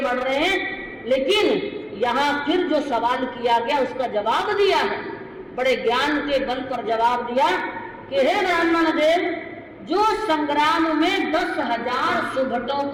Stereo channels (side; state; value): both; identical; correlation 1.00